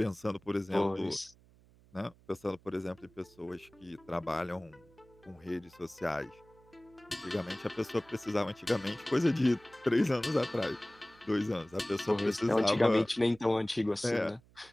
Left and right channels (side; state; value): right; noise; hum, 28 dB below the sound